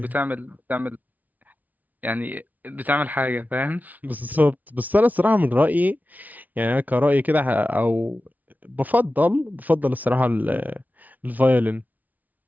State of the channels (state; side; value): late; left; 0.077 ms